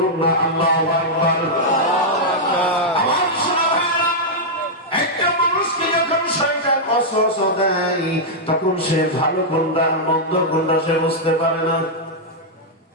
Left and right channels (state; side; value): normal; both; correlation -0.06